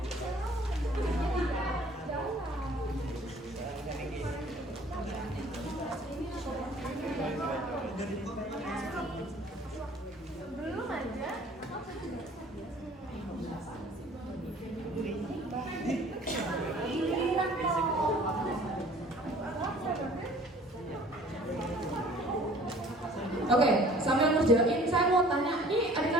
Belum aja. Oke, sambil ngerjain, saya mau tanya, ini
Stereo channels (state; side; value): normal; both; correlation 0.52